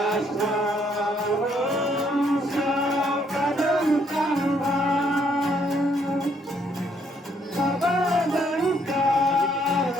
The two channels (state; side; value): normal; both; correlation 0.69